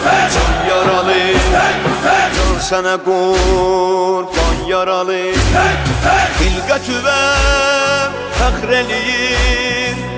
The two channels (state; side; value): identical; both; correlation 1.00